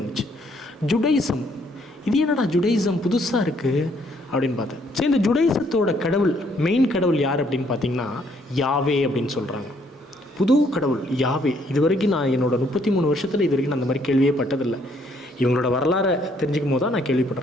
வந்துச்சு. ஜுடைசம், இது என்னடா ஜுடைசம் புதுசாக இருக்குது அப்படின்னு பார்த்தேன். சரி, இந்த ஜுடைசத்தோட கடவுள், மெயின் கடவுள் யார் அப்படின்னு பார்த்தீங்கன்னா யாவே அப்படின்னு சொல்கிறாங்க. புது கடவுள் யாவே. இது வரைக்கும் நான் என்னோடய 33 வருஷத்தில் இது வரைக்கும் நான் அந்த மாதிரி கேள்வியே பட்டதில்லை. இவங்களோட வரலாறை தெரிஞ்சுக்கும் போது தான் நான்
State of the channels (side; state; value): both; normal; correlation 0.67